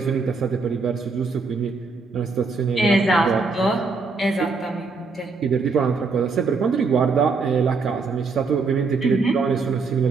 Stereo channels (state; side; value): quieter; left; 4.3 dB